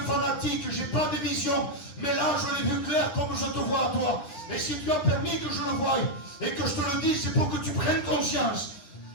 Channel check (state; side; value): late; right; 9.9 ms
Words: fanatique, je n'ai pas de vision. Mais là, je l'ai vu clair comme je te vois à toi. Et si tu as permis que je le voie et que je te le dise, c'est pour que tu prennes conscience